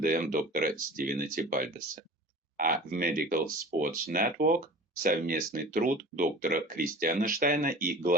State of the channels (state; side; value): normal; both; correlation 0.39